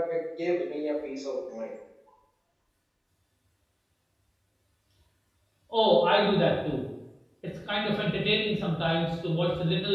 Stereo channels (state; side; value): identical; both; correlation 1.00